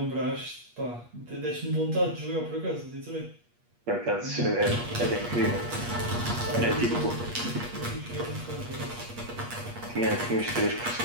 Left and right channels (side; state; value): left; late; 8.4 ms